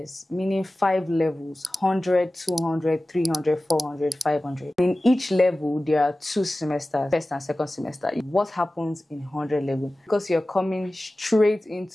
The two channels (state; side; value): normal; both; correlation 0.96